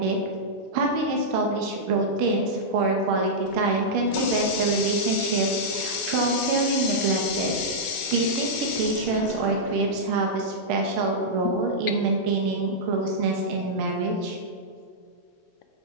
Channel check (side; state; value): both; normal; correlation -0.10